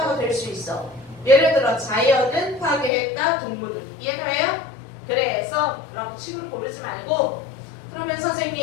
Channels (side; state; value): right; drops out; at 2.9 s